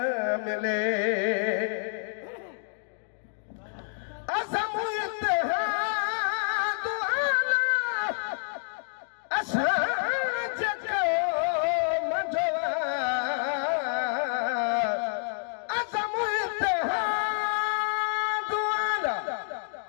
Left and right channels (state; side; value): silent; right; 59 dB below the other